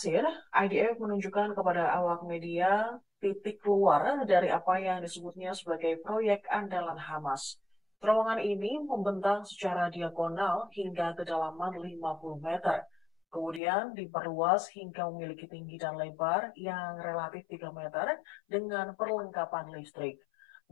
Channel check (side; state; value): right; drops out; at 13.6 s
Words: IDF menunjukkan kepada awak media titik keluar dari apa yang disebutnya sebagai proyek andalan Hamas. Terowongan ini membentang secara diagonal hingga kedalaman 50 meter. Kemudian diperluas hingga memiliki tinggi dan lebar yang relatif 3 meter dengan perlengkapan listrik.